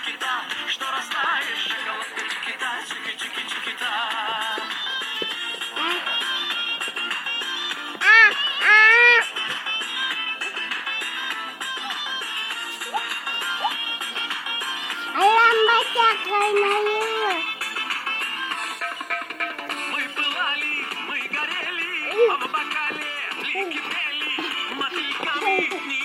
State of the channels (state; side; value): identical; both; correlation 1.00